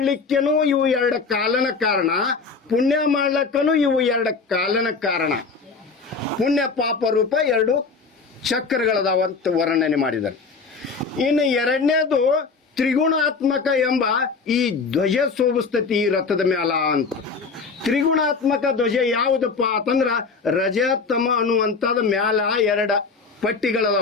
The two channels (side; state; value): right; quieter; 4.7 dB